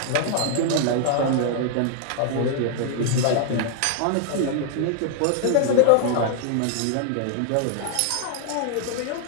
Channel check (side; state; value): both; different; correlation 0.00